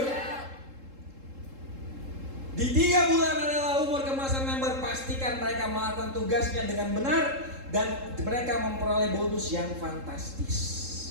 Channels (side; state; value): left; late; 3.7 ms